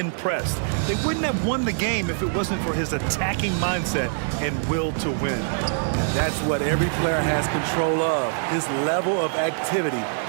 They wouldn't have won the game if it wasn't for his attacking mindset and will to win. That's what every player has control of, his level of activity.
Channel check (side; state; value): left; silent; digital silence